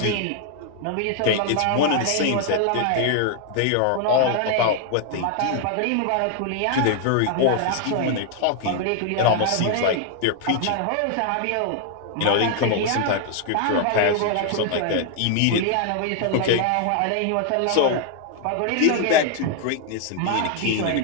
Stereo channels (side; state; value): both; different; correlation 0.00